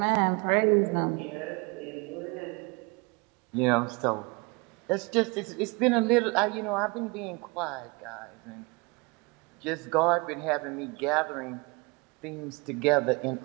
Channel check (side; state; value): left; quieter; 28.3 dB